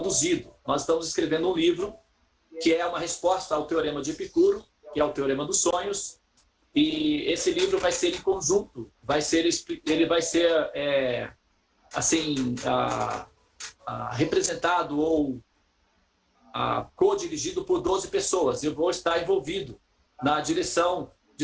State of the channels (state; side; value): identical; both; correlation 1.00